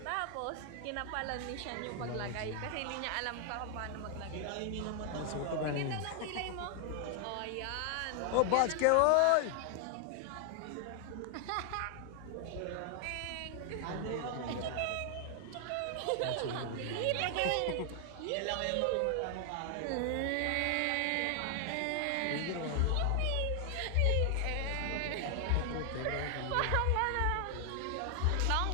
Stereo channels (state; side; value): different; both; correlation 0.00